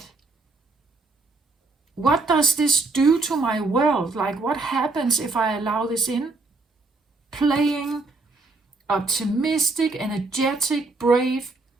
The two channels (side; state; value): left; quieter; 3.5 dB